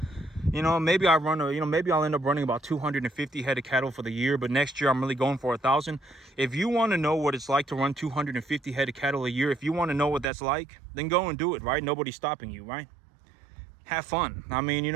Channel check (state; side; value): drops out; left; at 10.2 s